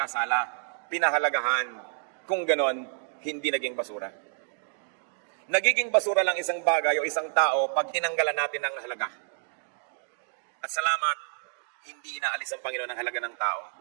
Pinahalagahan. Kung ganon, hindi naging basura. Nagiging basura lang isang bagay o isang tao pag tinanggalan natin ng halaga. At salamat, hindi inaalis ang Panginoon ang halaga ng tao.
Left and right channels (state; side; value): silent; left; digital silence